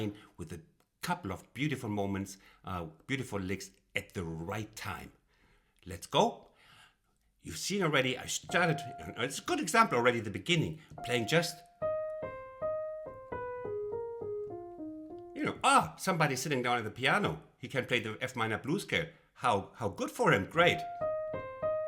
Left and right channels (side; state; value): both; identical; correlation 1.00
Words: with a couple of beautiful moments, beautiful licks at the right time. Let's go. You've seen already, I started, it's a good example already at the beginning, playing just, somebody sitting down at the piano. He can play the F minor blues scale. How good for him, great.